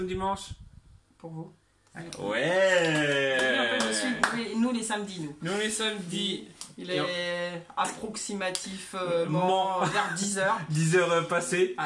dimanche. Pour vous. Ouais. Nous les samedis, nous. Nous les samedis. Il est approximativement vers 10h. 10h passées.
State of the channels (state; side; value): identical; both; correlation 1.00